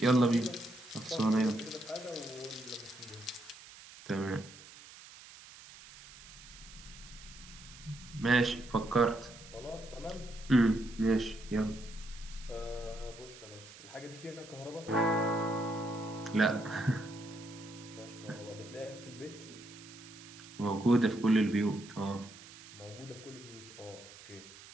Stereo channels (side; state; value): right; noise; hiss, 18 dB below the sound